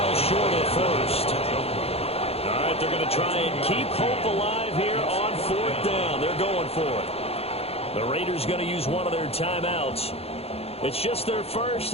short of first. All right, they're going to try and keep hope alive here on fourth down. They're going for it. The Raiders going to use one of their timeouts. It's just their first.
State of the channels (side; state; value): right; late; 0.29 ms